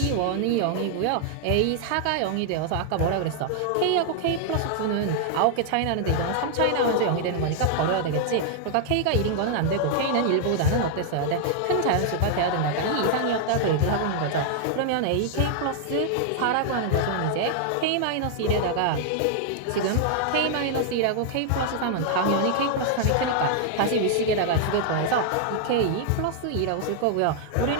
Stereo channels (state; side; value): different; both; correlation -0.01